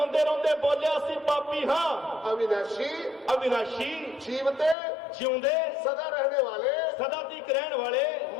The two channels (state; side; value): drops out; right; at 4.8 s